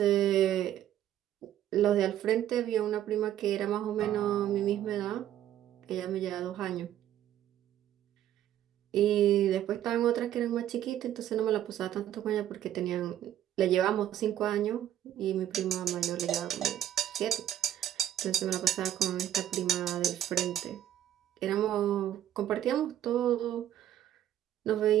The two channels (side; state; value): left; quieter; 11.6 dB